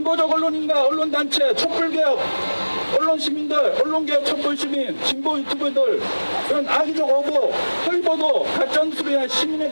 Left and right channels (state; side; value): inverted; both; correlation -1.00